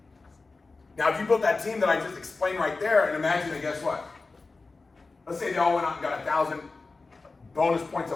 Now if you built that team that I just explained right there, and imagine that, guess what? Let's say they all went out and got 1,000 bonus points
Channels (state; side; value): quieter; right; 3.8 dB